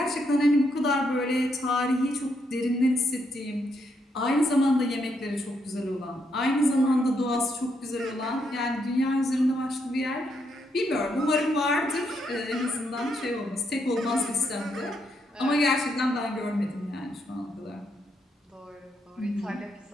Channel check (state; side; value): normal; both; correlation 0.77